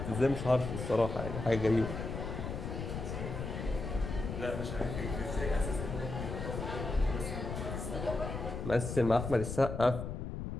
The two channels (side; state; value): left; noise; rumble, 5 dB below the sound